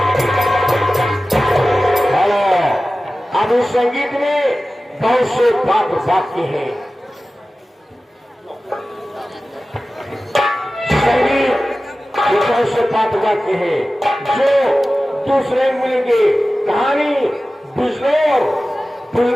अब इस संगीत में बहुत से पात्र वाक्य हैं। संगीत ये बहुत से पात्र वाक्य हैं जो दूसरे मिलेंगे। कहानी बिजनौर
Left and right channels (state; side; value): normal; both; correlation 0.96